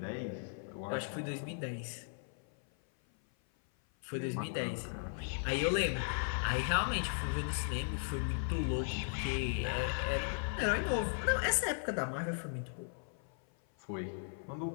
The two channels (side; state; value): right; silent; 53 dB below the other